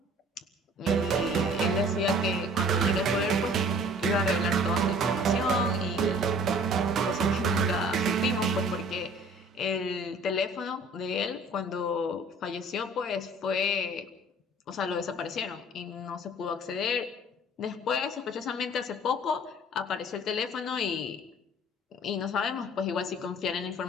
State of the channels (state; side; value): normal; both; correlation 0.51